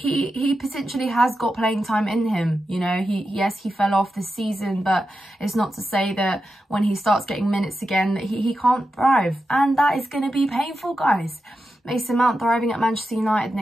potentially has got playing time in him. You know, yes, he fell off this season, but it's not to say that when he starts getting minutes again that he can't thrive, and that is going to be painful, guys. Mason Mount thriving at Manchester United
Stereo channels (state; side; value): normal; both; correlation 0.89